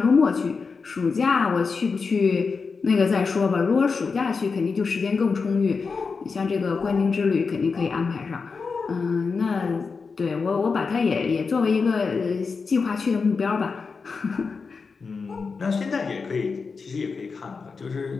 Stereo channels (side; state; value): right; quieter; 4.9 dB